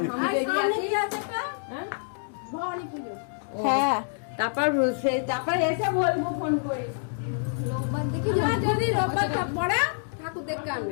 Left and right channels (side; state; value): right; silent; digital silence